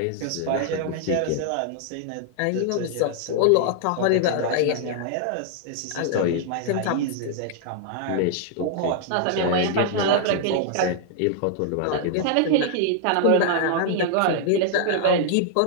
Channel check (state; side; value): different; both; correlation -0.01